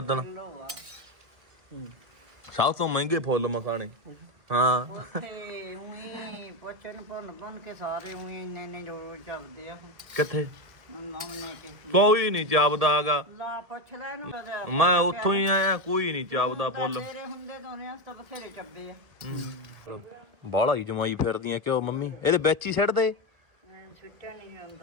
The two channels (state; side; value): late; left; 2.0 ms